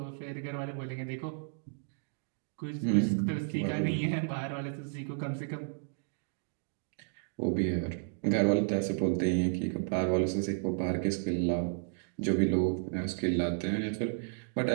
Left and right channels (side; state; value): left; silent; digital silence